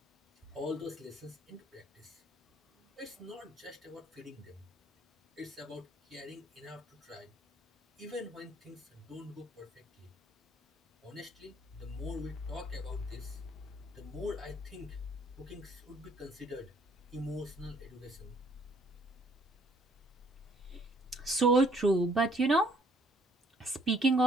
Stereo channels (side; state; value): both; normal; correlation 0.62